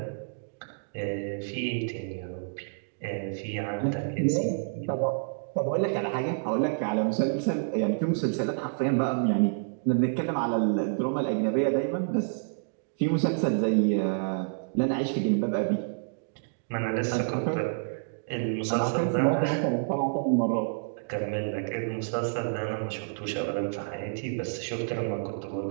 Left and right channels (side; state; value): left; silent; digital silence